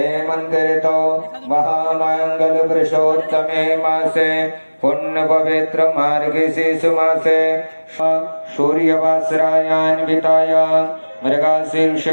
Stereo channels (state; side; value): inverted; both; correlation -1.00